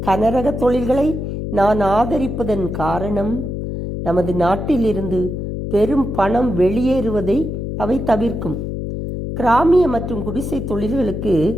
கனரக தொழில்களை நான் ஆதரிப்பதன் காரணம் நமது நாட்டிலிருந்து பெரும் பணம் வெளியேறுவதை அவை தவிர்க்கும். கிராமிய மற்றும் குடிசை தொழில்களுக்கு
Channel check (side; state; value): left; noise; hum, 4 dB below the sound